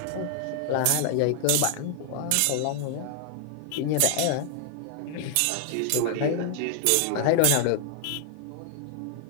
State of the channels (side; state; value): both; different; correlation 0.00